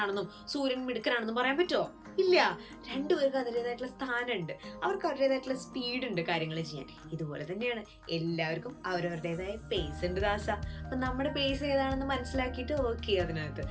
സൂര്യൻ മിടുക്കനാണെന്നും പറയാൻ പറ്റുമോ? ഇല്ല. രണ്ടുപേർക്ക് അതിൻ്റെതായിട്ടുള്ള സ്ഥാനമുണ്ട്, അവർക്ക് അവരുടേതായിട്ടുള്ള സ്പീഡ് ഉണ്ട് കാര്യങ്ങൾ ചെയ്യാൻ. ഇതുപോലെ തന്നെയാണ് എല്ലാവർക്കും അവരവരുടേതായ പേസ് ഉണ്ട് ദാസ. അപ്പൊ നമ്മുടെ പേസ് ഏതാണെന്ന് മനസ്സിലാക്കിയിട്ട് വർക്ക് ചെയ്യുക അതിനകത്ത്.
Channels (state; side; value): identical; both; correlation 1.00